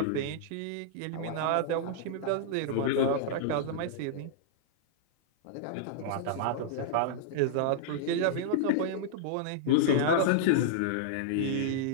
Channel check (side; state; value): both; different; correlation -0.02